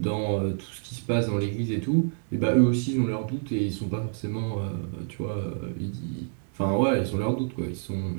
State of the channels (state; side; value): silent; left; digital silence